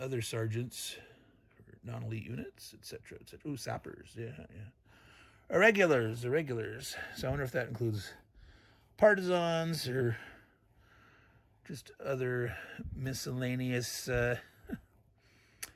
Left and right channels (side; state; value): both; identical; correlation 1.00